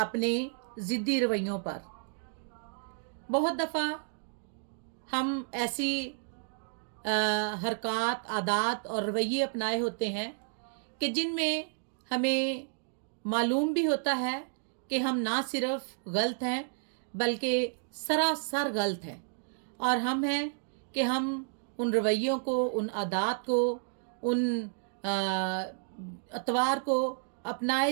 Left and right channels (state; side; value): silent; left; digital silence